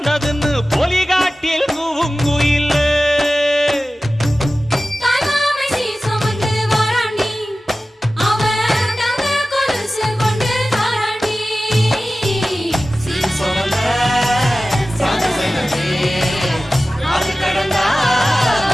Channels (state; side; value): normal; both; correlation 0.96